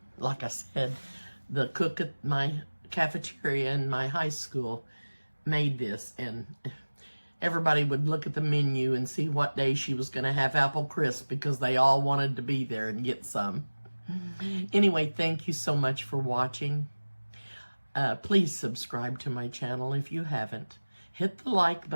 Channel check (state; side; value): inverted; both; correlation -1.00